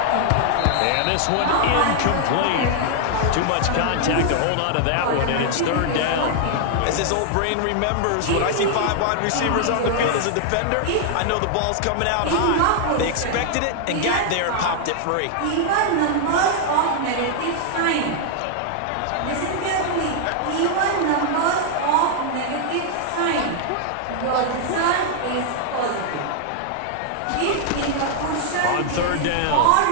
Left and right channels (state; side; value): different; both; correlation 0.00